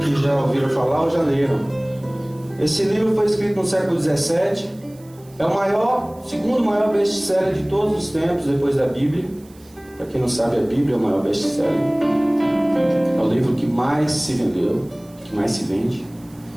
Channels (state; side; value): noise; right; hiss, 28 dB below the sound